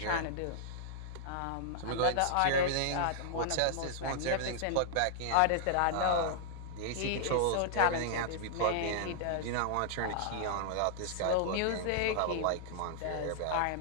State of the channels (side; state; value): both; different; correlation -0.01